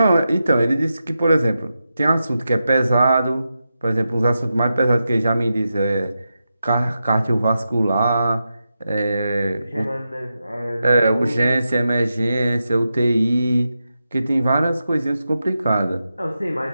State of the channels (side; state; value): both; inverted; correlation -0.89